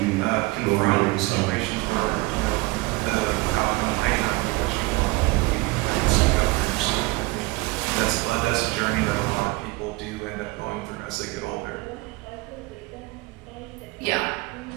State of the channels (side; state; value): left; quieter; 22.9 dB